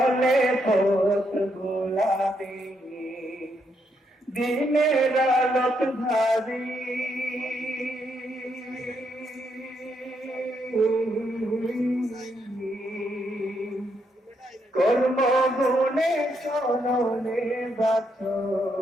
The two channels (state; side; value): normal; both; correlation 0.77